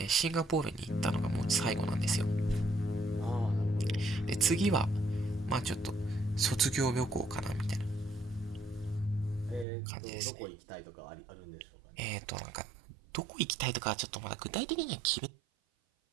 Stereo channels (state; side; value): drops out; left; at 9.7 s